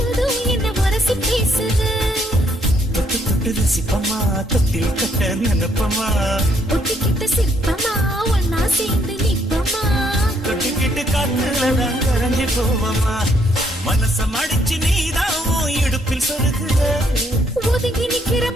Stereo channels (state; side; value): normal; both; correlation 0.70